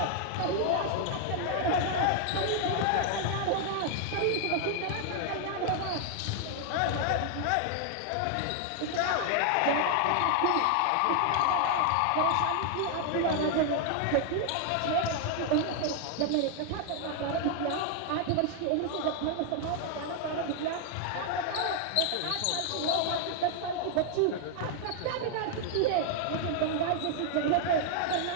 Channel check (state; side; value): different; both; correlation 0.00